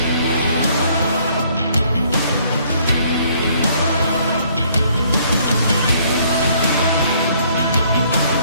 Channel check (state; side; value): inverted; both; correlation -0.64